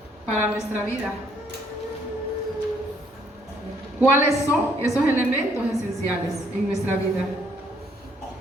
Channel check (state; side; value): normal; both; correlation 0.66